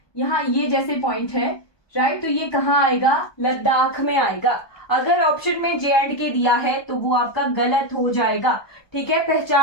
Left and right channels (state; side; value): late; right; 1.2 ms